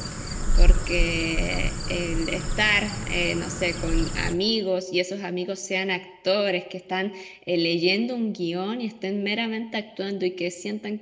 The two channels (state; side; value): identical; both; correlation 1.00